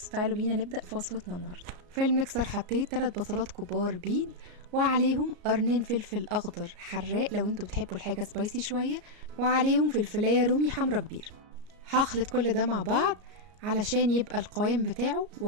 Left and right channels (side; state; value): left; late; 34 ms